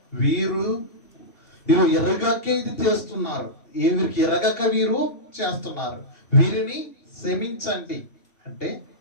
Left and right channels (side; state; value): right; late; 2.8 ms